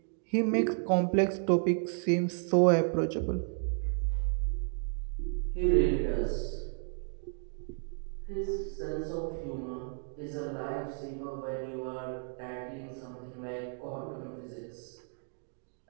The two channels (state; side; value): silent; left; 56 dB below the other